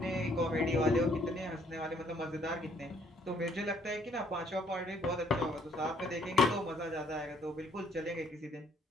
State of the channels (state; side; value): normal; both; correlation 0.65